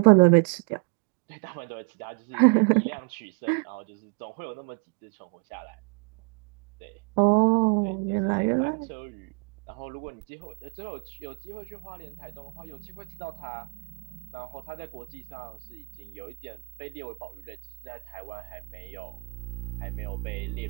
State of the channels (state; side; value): quieter; left; 34.8 dB